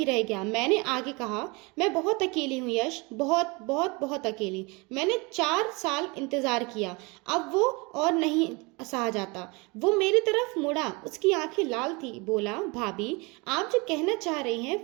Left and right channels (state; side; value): quieter; left; 27.3 dB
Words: रह गया। मैंने आगे कहा, मैं बहुत अकेली हूँ यश, बहुत बहुत बहुत अकेली। मैंने 4 साल इंतजार किया, अब वो और नहीं सहा जाता। वो मेरी तरफ मुड़ा, उसकी आंखें लाल थी। बोला, भाभी आप जो कहना चाह रही